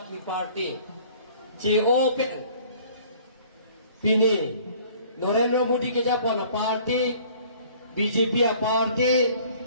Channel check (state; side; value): inverted; both; correlation -0.53